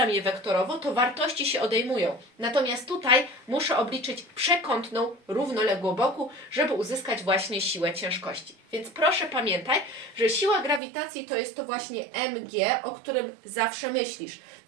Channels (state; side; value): drops out; left; at 10.8 s